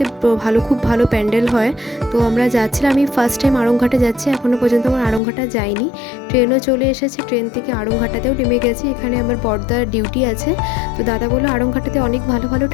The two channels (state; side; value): drops out; right; at 5.2 s